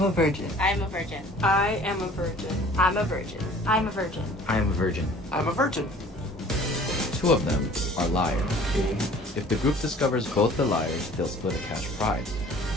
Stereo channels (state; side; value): normal; both; correlation 0.50